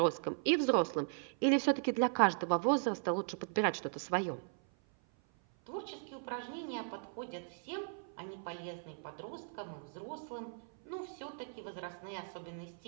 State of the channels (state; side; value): silent; left; 53 dB below the other